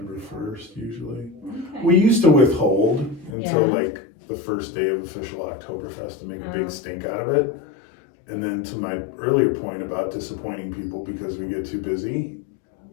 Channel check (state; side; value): drops out; right; at 3.4 s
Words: 1st usually. Okay. We used to withhold until Yeah. like the first day of official Oktoberfest to make a big stink out of it. And then to my earlier point about disappointing people because we get too busy,